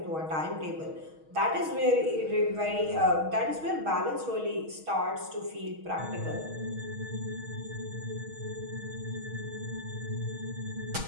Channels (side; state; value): left; late; 6.3 ms